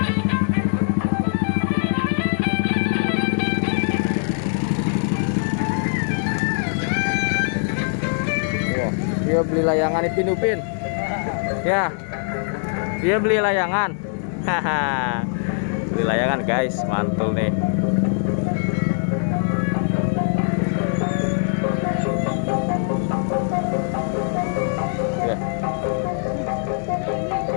Wah, dia beli layangan Ipin Upin. Ya, dia beli layangan. Haha, beli layangan guys, mantul nih.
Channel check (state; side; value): silent; right; digital silence